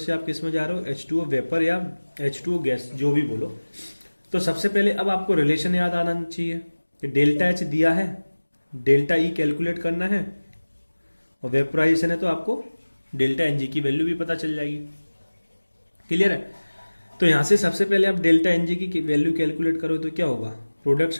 आप किस में जा रहे हो, H2O वेपर या H2O गैस, जो भी बोलो। तो सबसे पहले अब आपको रिलेशन याद आना चाहिए कि डेल्टा एच दिया है, डेल्टा ई कैलकुलेट करना है, और वेपोराइजेशन है तो आपको डेल्टा एनजी की वैल्यू भी पता चल जाएगी। क्लियर है, तो यहां से सबसे पहले आप डेल्टा एनजी की वैल्यू कैलकुलेट करो तो क्या होगा, product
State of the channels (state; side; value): inverted; both; correlation -1.00